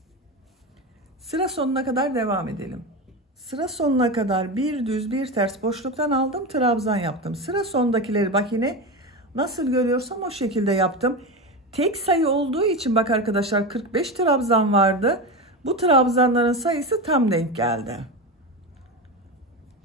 Sıra sonuna kadar devam edelim. Sıra sonuna kadar bir düz bir ters boşluktan aldım, trabzan yaptım. Sıra sondakileri bak yine nasıl görüyorsam o şekilde yaptım. Tek sayı olduğu için bak arkadaşlar 45 trabzan vardı. Bu trabzanların sayısı tam denk geldi.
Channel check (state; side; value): normal; both; correlation 0.20